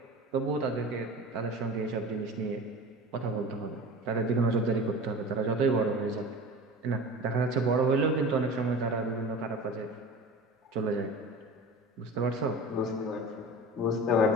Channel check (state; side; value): normal; both; correlation 0.35